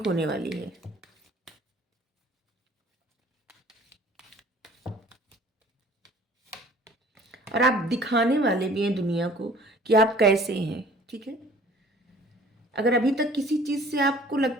होने वाली है। और आप दिखाने वाले भी हैं दुनिया को कि आप कैसे हैं, ठीक है? अगर अभी तक किसी चीज़ से आपको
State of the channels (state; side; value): normal; both; correlation 0.52